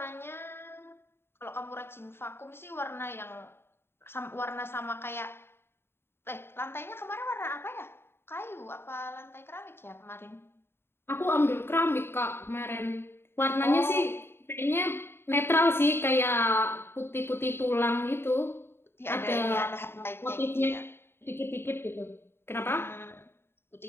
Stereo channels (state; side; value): late; right; 0.11 ms